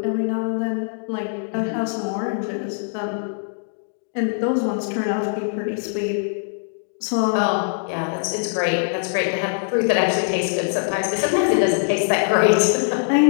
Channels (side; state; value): right; silent; digital silence